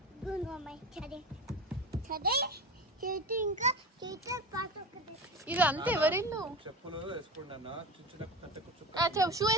ఇది అంతా ఎవరిల్లు? షూ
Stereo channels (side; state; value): both; normal; correlation 0.28